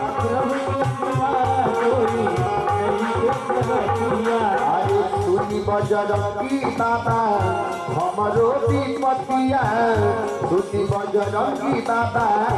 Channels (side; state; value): both; identical; correlation 1.00